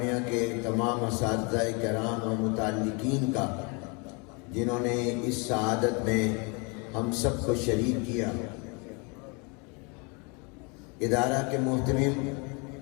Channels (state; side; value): quieter; right; 32.0 dB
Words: کے تمام اساتذہ کرام و متعلقین کا جنہوں نے اس سعادت میں ہم سب کو شریک کیا۔ ادارہ کے محتمم